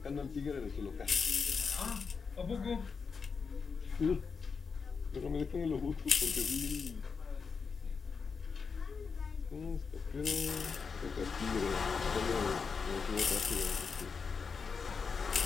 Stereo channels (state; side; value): quieter; right; 5.4 dB